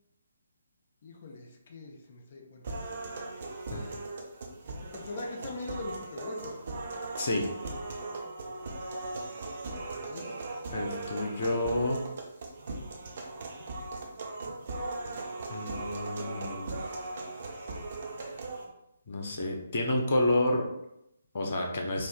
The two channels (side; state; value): both; inverted; correlation -0.79